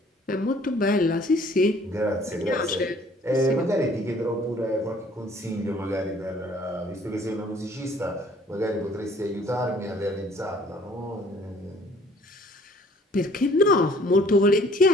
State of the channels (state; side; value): normal; both; correlation 0.57